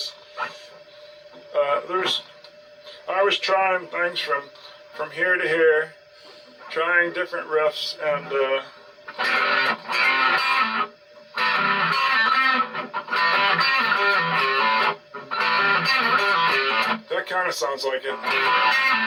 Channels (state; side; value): identical; both; correlation 1.00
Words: I was trying things from here to here, trying different riffs, and that kind of sounds like it.